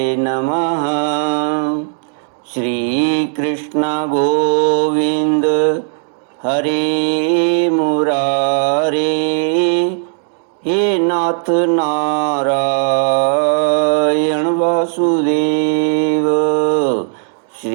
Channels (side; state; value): left; silent; digital silence